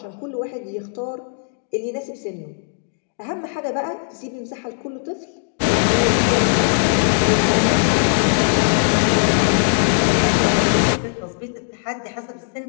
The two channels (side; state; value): right; silent; digital silence